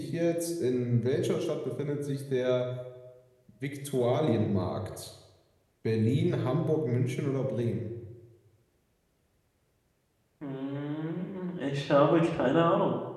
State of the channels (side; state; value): both; identical; correlation 1.00